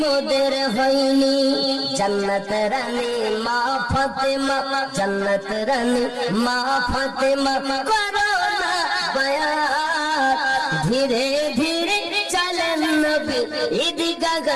মোদের হয়নি। জান্নাত রানী মা ফাতেমা, জান্নাত রানী মা ফাতেমা করো না বায়াত, ধীরে ধীরে চলেন নবী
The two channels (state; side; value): identical; both; correlation 1.00